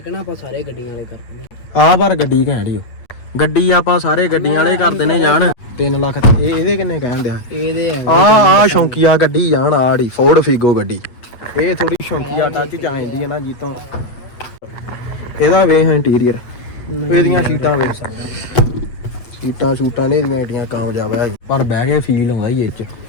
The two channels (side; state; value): right; late; 8.3 ms